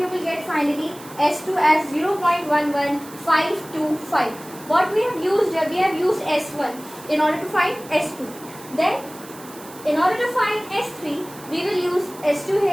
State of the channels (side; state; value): right; noise; hiss, 18 dB below the sound